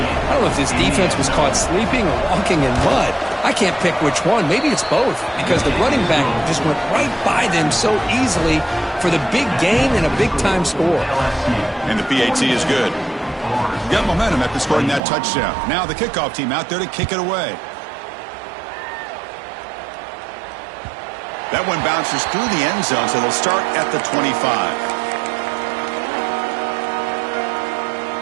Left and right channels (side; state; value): left; drops out; at 15.0 s